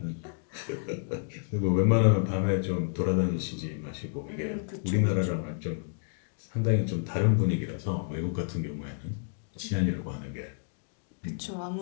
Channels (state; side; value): silent; right; digital silence